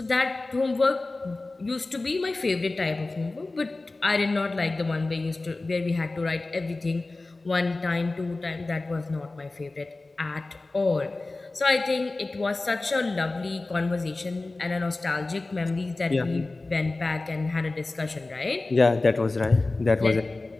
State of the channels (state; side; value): quieter; right; 3.2 dB